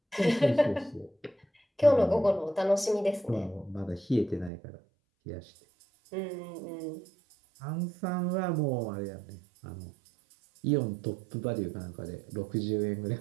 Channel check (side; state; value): left; drops out; at 4.5 s